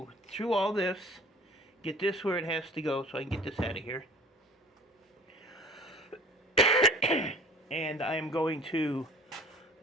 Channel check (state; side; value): normal; both; correlation 0.46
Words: through all this, get this where it has to go so I can get this out of here. And I am going to